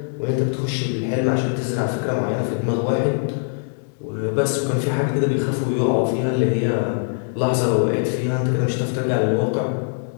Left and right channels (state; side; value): silent; right; digital silence